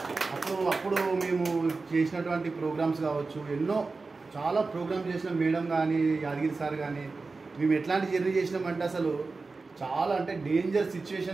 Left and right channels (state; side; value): quieter; left; 3.9 dB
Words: అప్పుడు మేము చేసినటువంటి ప్రోగ్రామ్స్ కావచ్చు, ఎన్నో చాలా ప్రోగ్రామ్స్ చేసిన మేడం కానీ యాదగిరి సార్ కానీ మేము ఎట్లాంటి జర్నీ చేసినామంటే అసలు చాలా అంటే డేంజర్